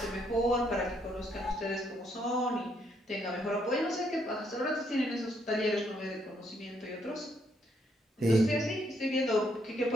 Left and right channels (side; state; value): both; normal; correlation 0.73